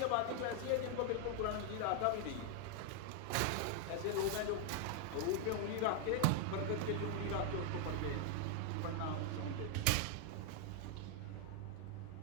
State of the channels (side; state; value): both; different; correlation 0.00